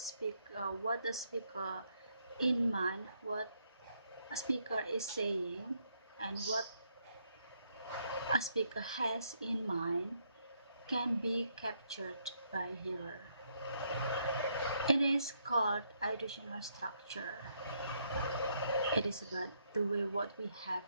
what the speaker in mind, what a speaker is saying, and what a speaker has in mind can be captured by hearer. It is called auditional structure. It is about the way what we have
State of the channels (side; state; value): both; inverted; correlation -0.74